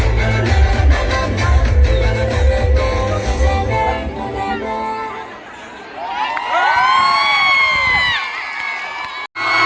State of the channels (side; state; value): both; identical; correlation 1.00